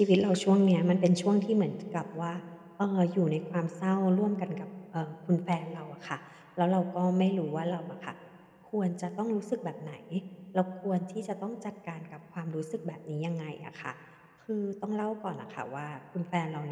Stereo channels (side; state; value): both; identical; correlation 1.00